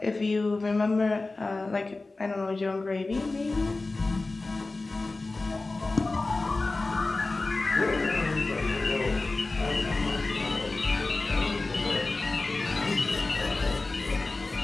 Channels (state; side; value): quieter; right; 3.3 dB